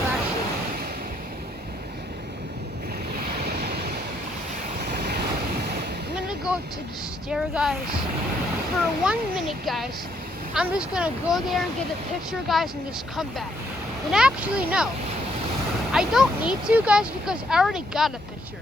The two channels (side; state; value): both; normal; correlation 0.71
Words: I'm gonna go to the stair, guys. For 1 minute, guys. I'm just gonna go there and get a picture, guys, and just come back. And actually, no. I don't need to, guys, because I already got a